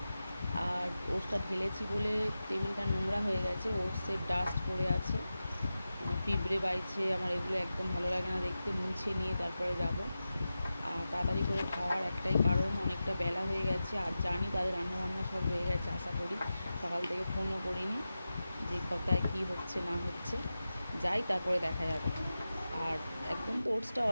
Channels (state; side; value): inverted; both; correlation -0.93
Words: আর ওটসটা ঢেলেছি বলে টেবিলটা নোংরা হয়ে গেছে, ওটসের ডাস্ট পড়ে আছে, পিঁপড়ে বাইছে। আমার এগুলো একদম ভালো লাগে না দেখতে। মুছে নিয়ে তারপরে যাব। আর তাড়াতাড়ি করে খাওয়ার একটাই কারণ, অনেকটা বেলা হয়ে গেছে। আর জানি তাদের রান্নাবান্না সব হয়ে গেছে, আশা করি। সকাল থেকে ফোনও করিনি যে কোথায় কী হচ্ছে না হচ্ছে। যাই, তারপরে দেখা যাবে। আর একদম তো ওটসটা